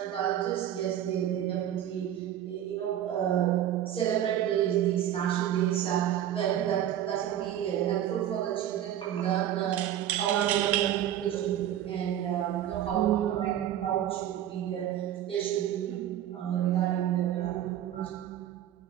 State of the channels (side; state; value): left; quieter; 11.2 dB